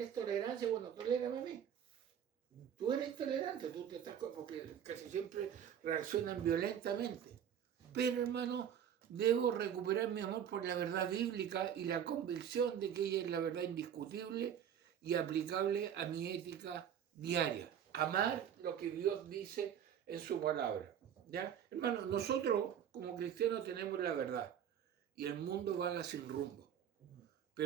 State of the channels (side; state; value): left; quieter; 9.0 dB